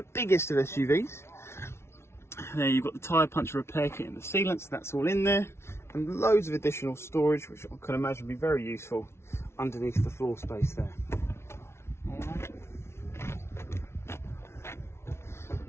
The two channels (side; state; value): right; late; 0.12 ms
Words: biggest of SUVs. There you've got the tyre puncher repair kit and the sealants, that's all in there, and loads of additional storage which I can imagine be very useful underneath the floor space there. Alright.